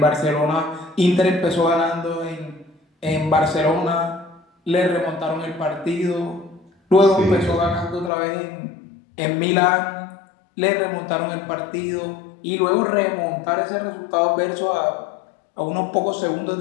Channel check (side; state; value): right; drops out; at 8.1 s